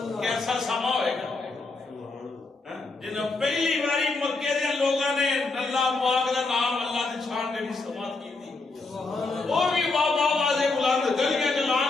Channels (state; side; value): quieter; right; 3.7 dB